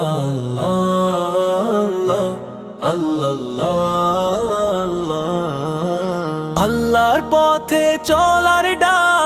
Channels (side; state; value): both; identical; correlation 1.00